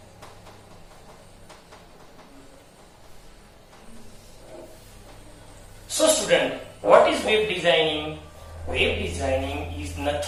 So student, what is web designing? Web designing is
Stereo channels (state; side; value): identical; both; correlation 1.00